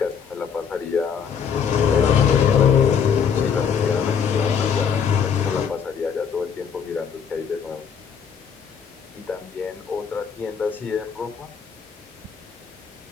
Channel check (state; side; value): quieter; right; 7.1 dB